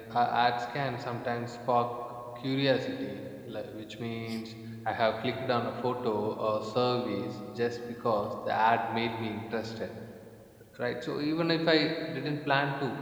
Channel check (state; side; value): identical; both; correlation 1.00